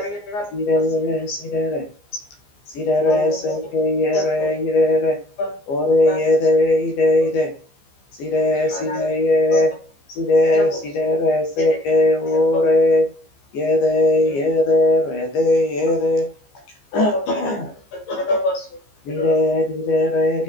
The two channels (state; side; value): late; right; 15 ms